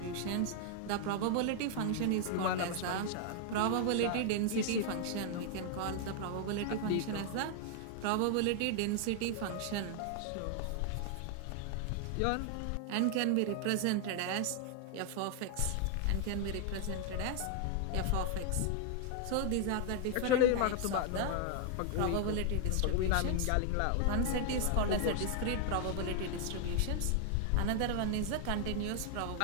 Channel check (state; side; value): different; both; correlation 0.00